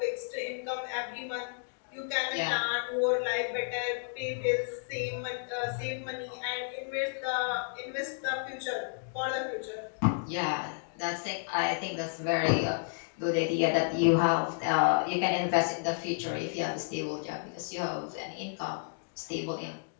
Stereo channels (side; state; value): right; silent; digital silence